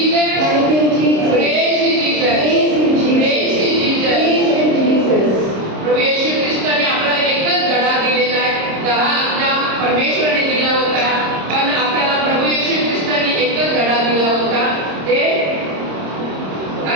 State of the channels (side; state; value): left; late; 26 ms